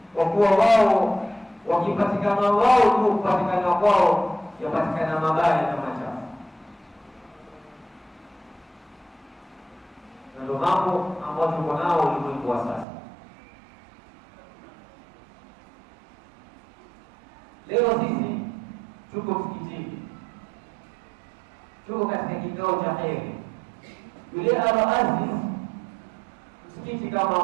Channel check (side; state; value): left; drops out; at 12.9 s